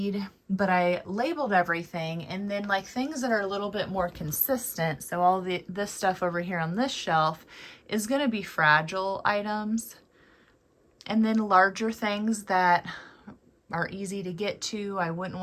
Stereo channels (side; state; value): both; identical; correlation 1.00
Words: but I labeled everything, and then like things that are a little bit more consistent. So all this stuff over here on this shelf is going to be fragile items. And then larger things that are easy to get to, I wouldn't